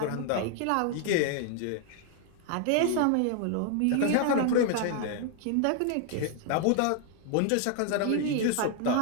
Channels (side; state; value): both; different; correlation 0.00